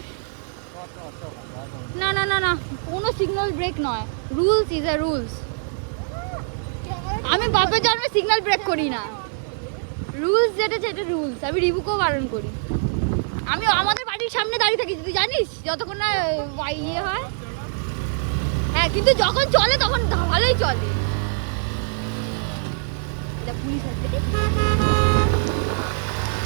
না না না না কোনো সিগন্যাল ব্রেক নয় রুলস ইজ আ রুলস আমি বাপের জন্মে সিগন্যাল ব্রেক করি না রুলস যেটা সেটা রুলস আমি রিবুকেও বারণ করি আমি আমাদের বাড়ির সামনে দাঁড়িয়ে থাকি তুই জানিস যতক্ষণ না ইয়ে হয় হ্যাঁ কিন্তু যখন চলে তখন ভালোই চলে এটা পুলিশ আছে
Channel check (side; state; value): left; silent; digital silence